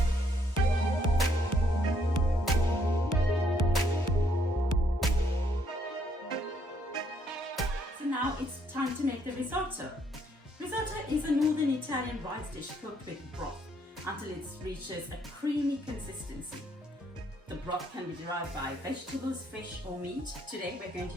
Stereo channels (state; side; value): normal; both; correlation 0.70